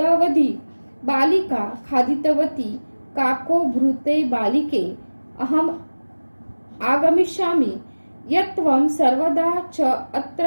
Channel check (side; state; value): both; inverted; correlation -1.00